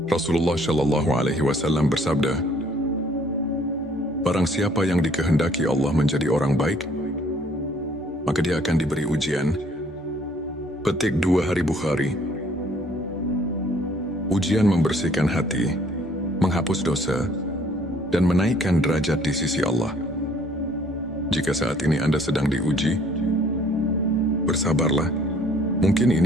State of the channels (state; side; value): normal; both; correlation 0.60